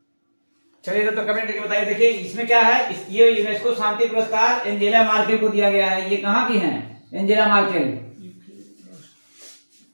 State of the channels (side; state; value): both; inverted; correlation -1.00